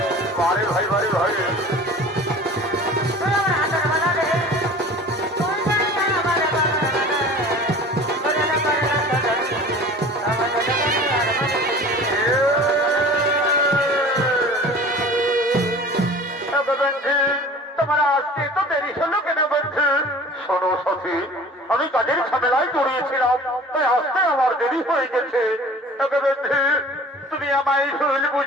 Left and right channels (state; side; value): normal; both; correlation 0.42